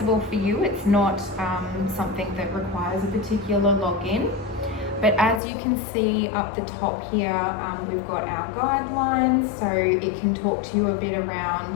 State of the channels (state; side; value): drops out; right; at 5.4 s